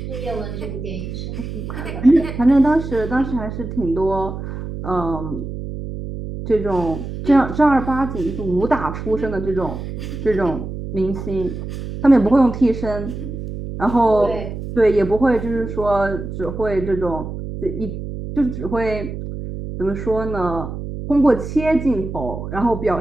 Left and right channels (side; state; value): right; noise; hum, 7 dB below the sound